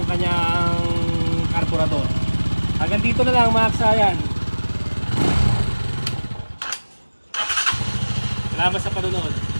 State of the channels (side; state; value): both; inverted; correlation -1.00